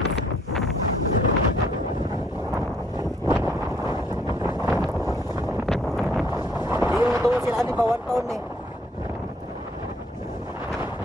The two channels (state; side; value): normal; both; correlation 0.65